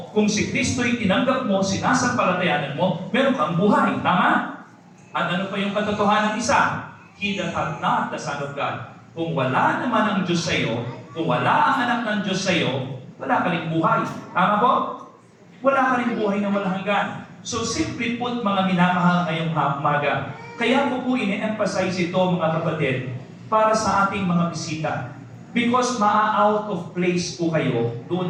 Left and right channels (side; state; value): both; identical; correlation 1.00